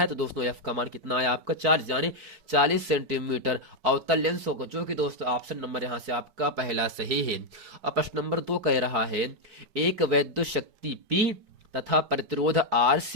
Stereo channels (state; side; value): late; left; 4.6 ms